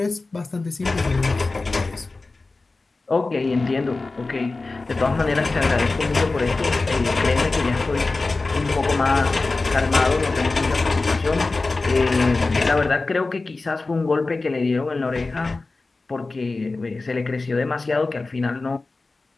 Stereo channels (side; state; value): right; quieter; 3.5 dB